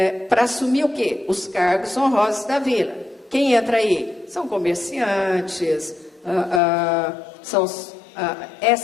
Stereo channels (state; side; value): drops out; right; at 6.6 s